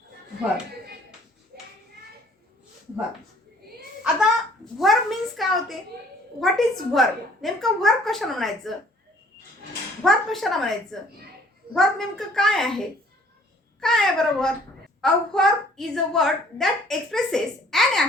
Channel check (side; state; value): both; normal; correlation 0.58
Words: वर्ब. आता वर्ब मीन्स काय होते? What is verb? नेमकं वर्ब कशाला म्हणायचं? वर्ब कशाला म्हणायचं? वर्ब नेमकं काय आहे? काय आहे बरं verb? A verb is a word that expresses an